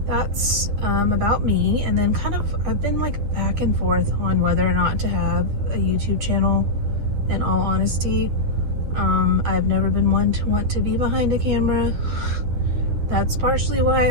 that's about me. And then kind of I've been like back and forth on whether or not to have a YouTube channel, in all honesty. I've never been one to want to be behind a camera. That's partially why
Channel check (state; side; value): late; left; 9.9 ms